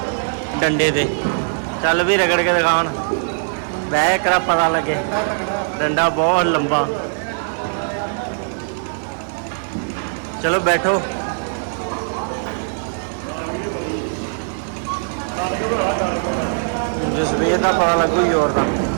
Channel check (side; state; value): left; silent; digital silence